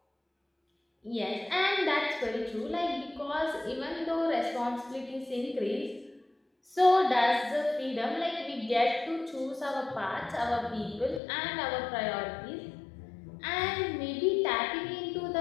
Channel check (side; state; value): right; drops out; at 11.2 s